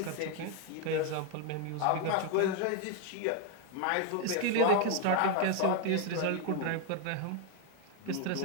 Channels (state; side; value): different; both; correlation 0.01